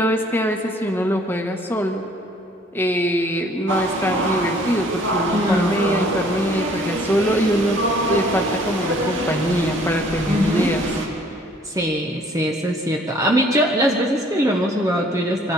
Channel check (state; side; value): normal; both; correlation 0.58